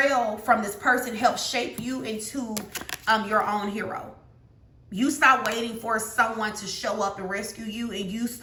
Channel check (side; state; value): both; identical; correlation 1.00